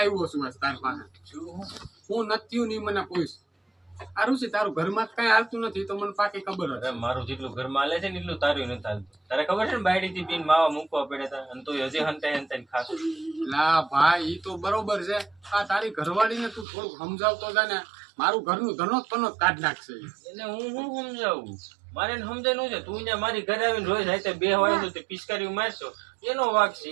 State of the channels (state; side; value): drops out; left; at 16.7 s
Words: છું તારી પાસે હું નથી નહીં મને પૂછ સારું છે તારું ઘરમાં કઈ હાલતું નથી તો મને પાકી ખબર અરે મારું જેટલું ઘરમાં હાલે છે ને એટલું તારું નથી હાલતું તારે ખબર છે ને બાયડી થી પીને માવા મૂકવા પડે હતા અને તું હજી હંતાઈ ખાસ લા ભાઈ ઈ તો બરોબર છે આ તારી ઘરવાળીને તું થોડુંક સમજાવતો જા ને મારું ઘરનું ધનોત પનોત કાઢ નાખશે એને હું સમજાવું મારે સમજાય છે તું ત્યાં મારી ઘરે આવીને રોજ રાતે બે હોય તો તે પિચકારી મારશો એનો વાક છે